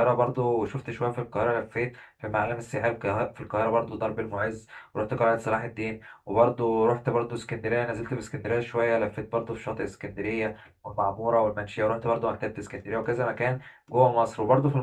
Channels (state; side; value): identical; both; correlation 1.00